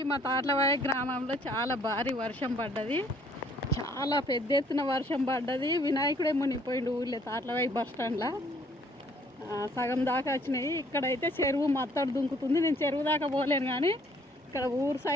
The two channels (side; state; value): both; normal; correlation 0.61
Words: మా తాట్లవాయి గ్రామంలో చాలా భారీ వర్షం పడ్డది. చాలా పెద్ద ఎత్తున వర్షం పడ్డది. వినాయకుడే మునిగిపోయిండు ఊళ్ళో తాట్లవాయి బస్ స్టాండ్లో. సగం దాకా వచ్చినాయి. ఇక్కడైతే చెరువు మత్తడు దుంకుతుంది. నేను చెరువు దాకా పోలేను, కానీ ఇక్కడ ఊరు